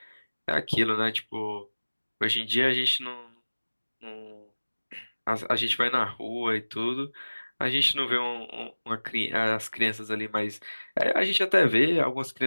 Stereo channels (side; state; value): both; inverted; correlation -1.00